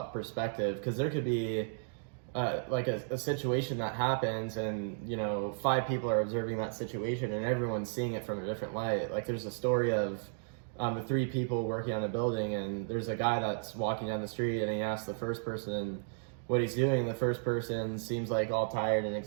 perspective, because there could be like a situation that happens and, 5 people are observing that situation and everyone's seeing it from a different light. Like there's a story of the 3 people working on a building, and there's a guy that's walking down the street and he asks the first person what he's doing. The first person seems like all tired and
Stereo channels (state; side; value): silent; left; digital silence